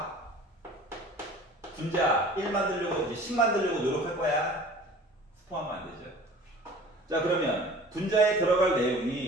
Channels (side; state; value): both; normal; correlation 0.45